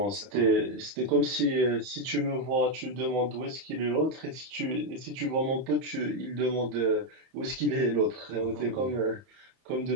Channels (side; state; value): left; late; 31 ms